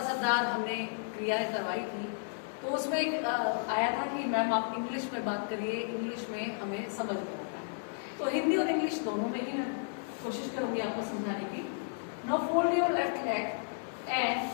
असरदार हमने क्रियाएं करवाई थी तो उसमें एक आया था कि मैम आप इंग्लिश में बात करिए, इंग्लिश में हमें समझ में आता है। तो हिंदी और इंग्लिश दोनों में ही मैं कोशिश करूंगी आपको समझाने की। Now fold your left leg and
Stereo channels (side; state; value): right; silent; digital silence